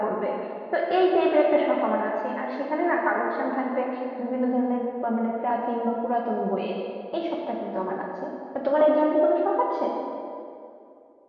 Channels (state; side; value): identical; both; correlation 1.00